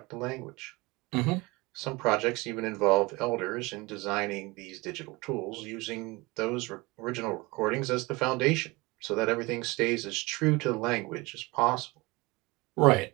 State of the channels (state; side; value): quieter; left; 23.8 dB